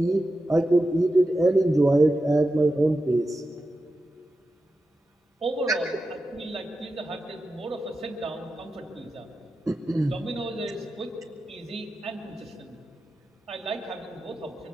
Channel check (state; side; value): normal; both; correlation 0.91